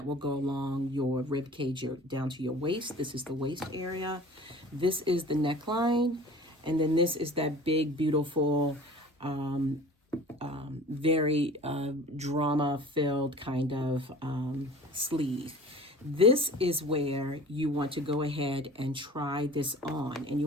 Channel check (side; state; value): both; normal; correlation 0.43